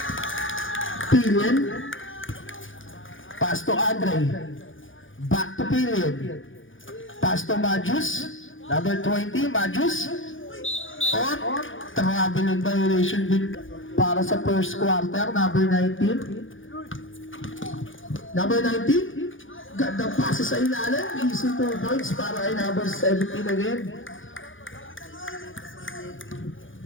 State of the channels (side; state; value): right; late; 0.57 ms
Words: Pillion. Pass to Andre. Back to Pillion. Pass to Majus. Number 20, Majus. On. Nakabulong violation din para sa first quarter. Number 19. Number 19. Gandang pasa sa ilalim. Easy 2 points para kay number 17 again.